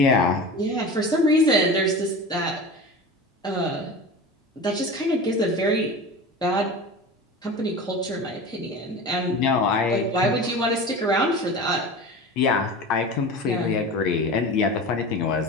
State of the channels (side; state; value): both; normal; correlation 0.32